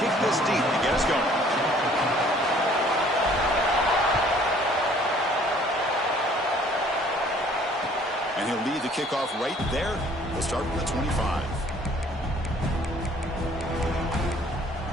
this deep to get us going. And he'll lead the kickoff right there. We'll start with the 25.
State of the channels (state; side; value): normal; both; correlation 0.57